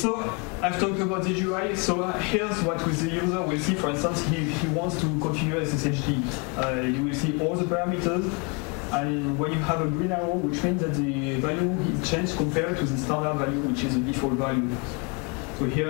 I've talked about the GUI. So here's what the user will see. For instance, he wants to configure SSHD. You will see all the parameters. and when you have a green arrow, which means that the value is changed compared to the standard value, which is the default value. So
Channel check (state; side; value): quieter; right; 31.7 dB